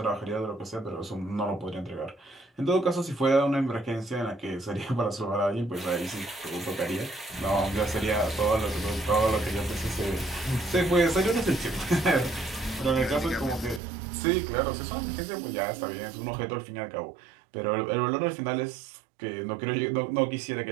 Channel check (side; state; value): left; drops out; at 13.8 s